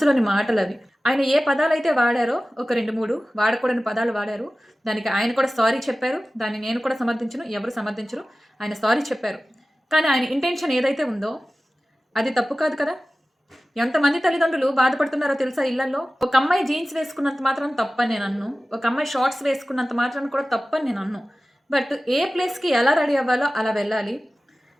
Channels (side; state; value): both; normal; correlation 0.96